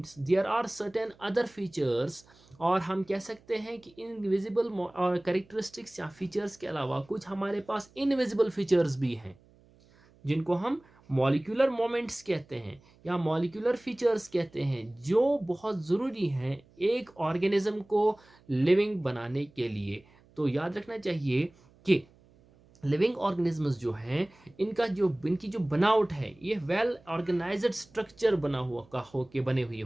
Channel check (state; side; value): noise; right; hum, 29 dB below the sound